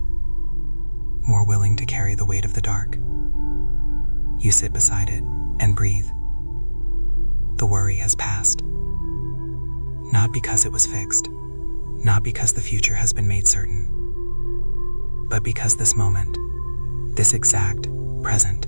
more willing to carry the weight of the dark. You sit beside it and breathe. The worry has passed. Not because it was fixed, not because the future has been made certain, but because this moment, this exact, present,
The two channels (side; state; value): both; inverted; correlation -1.00